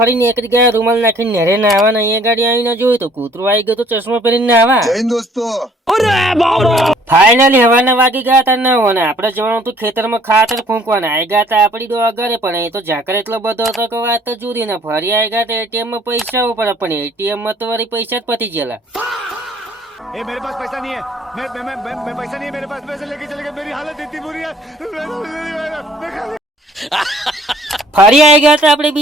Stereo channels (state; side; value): normal; both; correlation 0.58